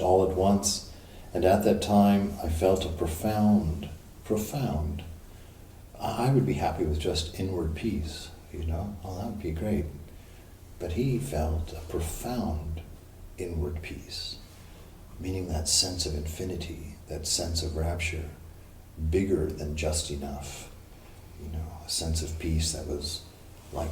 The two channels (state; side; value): identical; both; correlation 1.00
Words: at once, and at that time I felt a profound, I would be happy with just inward peace, oh, that would be great. But he felt a profound inward peace, meaning that sense of infinity, that sense of rapture, bigger than just enough, a sense of peace that was